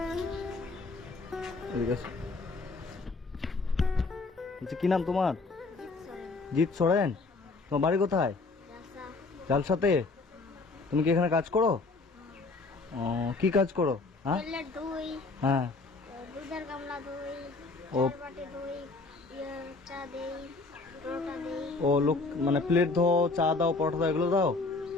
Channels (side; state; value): right; quieter; 3.7 dB